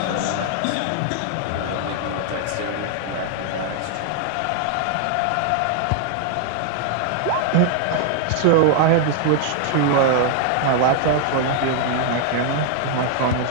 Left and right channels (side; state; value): both; different; correlation 0.00